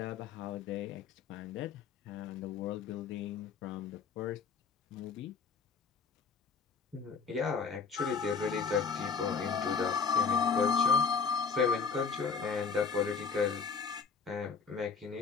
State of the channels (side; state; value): right; quieter; 5.5 dB